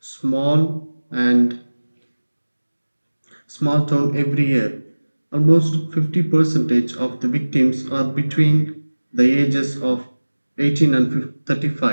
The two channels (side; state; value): both; inverted; correlation -1.00